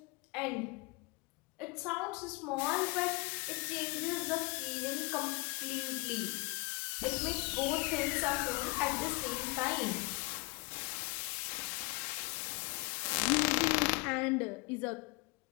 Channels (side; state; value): right; quieter; 27.7 dB